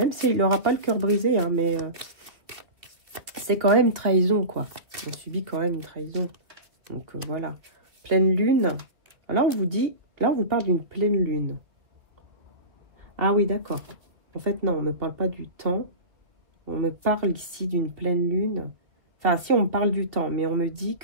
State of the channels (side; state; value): left; late; 2.2 ms